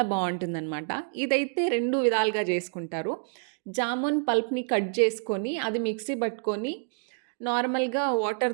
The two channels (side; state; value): left; silent; digital silence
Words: బావుంటుందనమాట. ఇదైతే 2 విధాలుగా చేసుకుంటారు. జామున్ పల్ప్‌ని కట్ చేసుకొని, అది మిక్సీ పట్టుకొని నార్మల్‌గా వాటర్